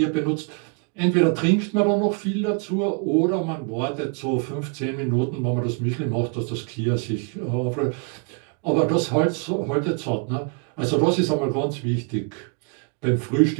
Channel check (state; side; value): quieter; left; 36.3 dB